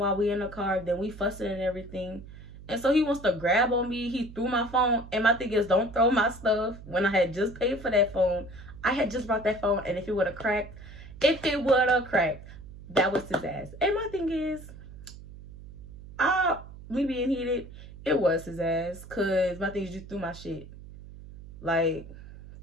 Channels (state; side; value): noise; right; hum, 16 dB below the sound